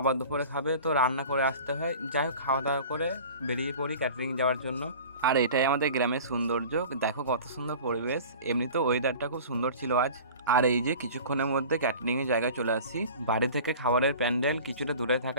দুপুরে খাবে, তো রান্না করে আসতে হয়। যাই হোক, খাওয়া দাওয়া করে বেরিয়ে পড়ি ক্যাটারিং যাওয়ার জন্য। আর এটাই আমাদের গ্রামের সৌন্দর্য, দেখো কত সুন্দর পরিবেশ। এমনিতেও ওয়েদারটা খুব সুন্দর ছিল আজ। আর এই যে কিছুক্ষণের মধ্যে ক্যাটারিং এর জায়গায় চলে আসি। বাড়ি থেকে খাবারের প্যান্ডেল কিছুটা দূরে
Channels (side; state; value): both; inverted; correlation -0.40